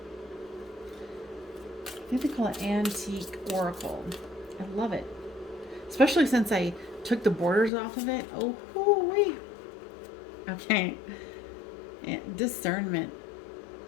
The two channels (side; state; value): right; drops out; at 7.7 s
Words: I think they call it Antique Oracle. I love it. Especially since I took the borders off of it. Oh, hoo-wee. Okay. Discernment.